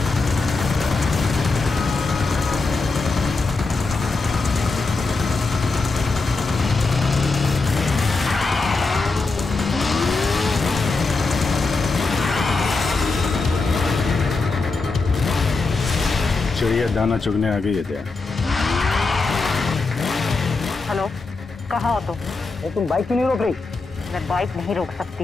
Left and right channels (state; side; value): quieter; right; 3.8 dB